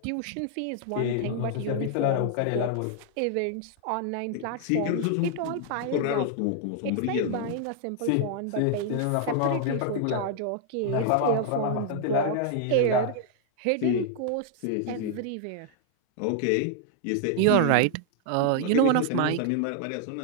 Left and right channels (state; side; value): different; both; correlation 0.00